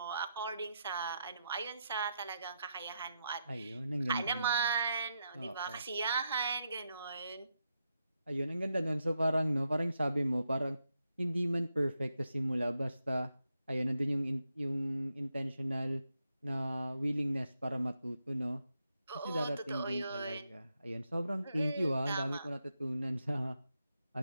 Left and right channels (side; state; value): both; inverted; correlation -0.84